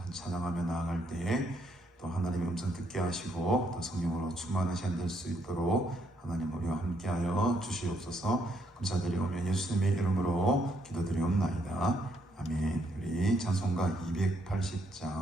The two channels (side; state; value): both; normal; correlation 0.73